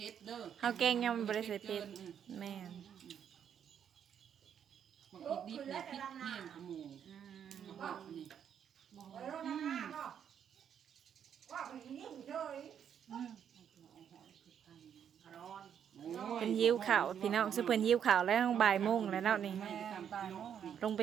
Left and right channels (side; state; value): left; quieter; 8.6 dB